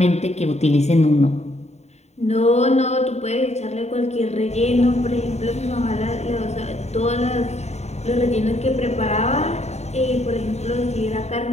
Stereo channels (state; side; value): late; right; 0.32 ms